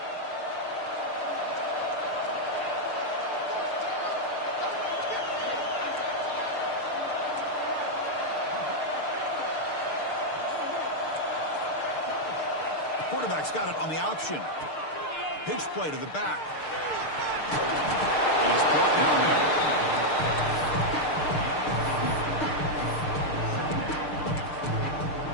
Quarterback's got it on the option. Pitch play to the back. And he's brought down there.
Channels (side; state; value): right; late; 6.6 ms